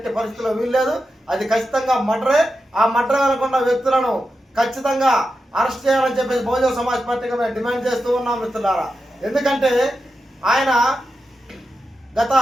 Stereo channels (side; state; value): both; normal; correlation 0.90